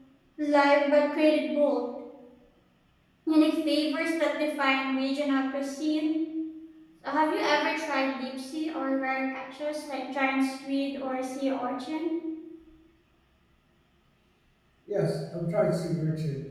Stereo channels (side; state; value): both; identical; correlation 1.00